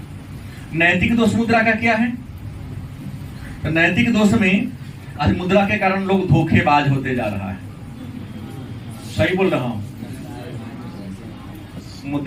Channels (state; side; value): identical; both; correlation 1.00